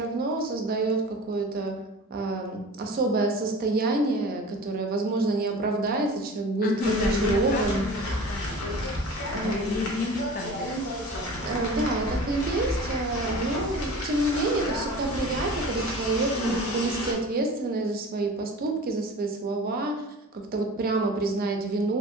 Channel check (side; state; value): both; normal; correlation 0.39